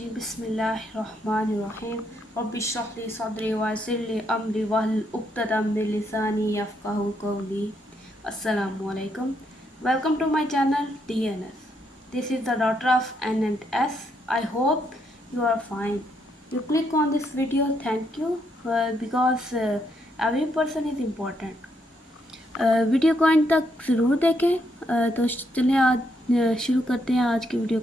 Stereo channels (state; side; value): normal; both; correlation 0.76